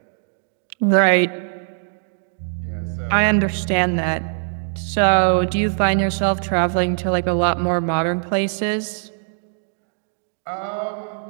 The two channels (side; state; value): left; silent; digital silence